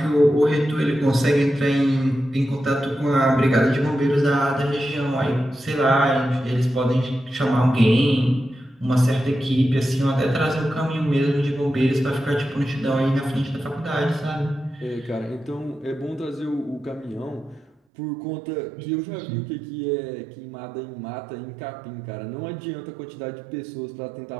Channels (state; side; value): drops out; left; at 17.7 s